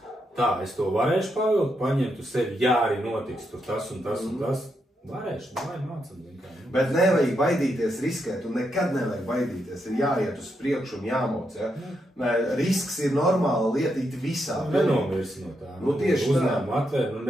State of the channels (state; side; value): normal; both; correlation 0.82